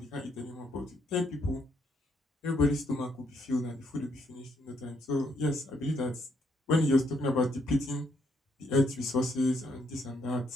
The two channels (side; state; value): both; normal; correlation 0.73